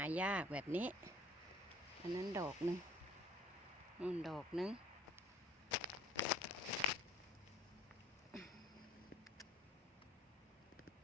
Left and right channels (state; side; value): normal; both; correlation 0.54